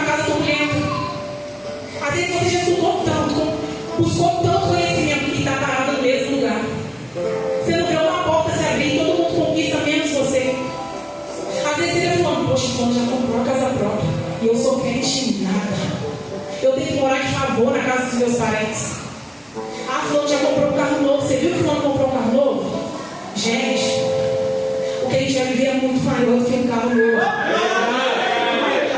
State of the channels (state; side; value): identical; both; correlation 1.00